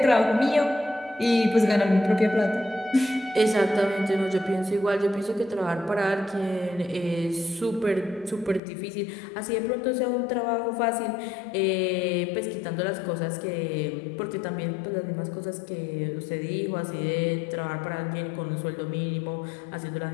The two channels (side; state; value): right; drops out; at 8.6 s